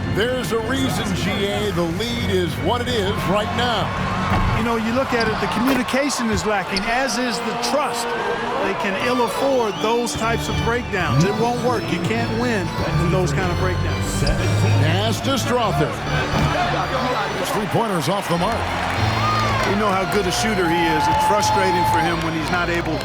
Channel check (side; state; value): both; identical; correlation 1.00